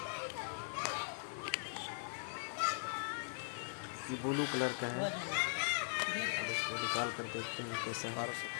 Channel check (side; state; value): right; silent; digital silence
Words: ये ब्लू कलर का है। अब इसको निकाल कर देखते हैं कैसा है।